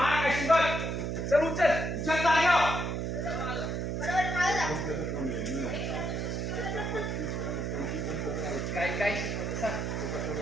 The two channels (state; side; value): noise; right; hum, 2 dB below the sound